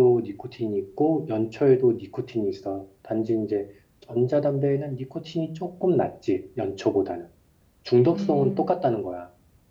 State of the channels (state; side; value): identical; both; correlation 1.00